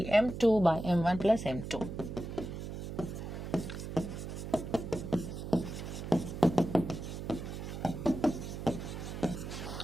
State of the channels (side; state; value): right; noise; hum, 7 dB below the sound